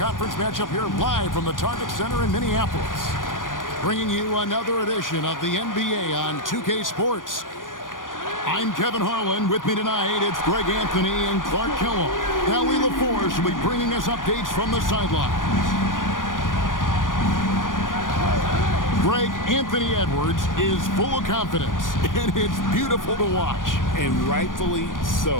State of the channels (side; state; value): right; late; 0.89 ms